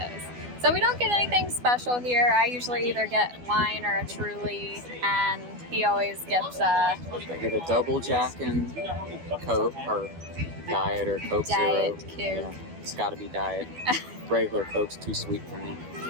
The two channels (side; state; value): left; late; 12 ms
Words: So we don't get anything special here. I usually either get wine or a Truly, and he always gets I get a double Jack and Coke, or Diet or Coke Diet Zero. Coke. Yeah, it's got to be Diet. Regular Coke's too sweet for me.